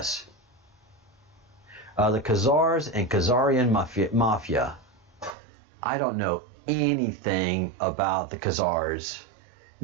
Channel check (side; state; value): left; drops out; at 5.4 s